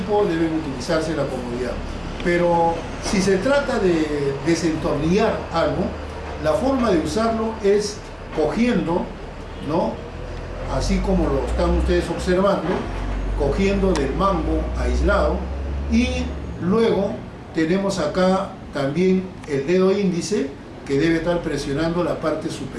deben utilizarse la comodidad. Pero si se trata de desentornillar algo, la forma de usarlo es cogiendo, ¿no? Así como lo están ustedes observando, cogiendo del mango aislado, y luego tenemos acá también el dedo índice que debe estar presionando la parte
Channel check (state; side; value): identical; both; correlation 1.00